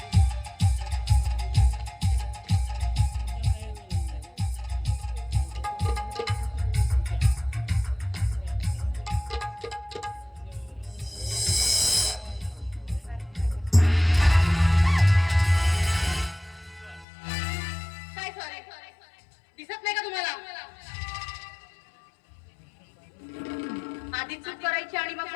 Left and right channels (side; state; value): right; drops out; at 17.1 s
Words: दिसत नाही का तुम्हाला? आधी चूक करायची आणि मग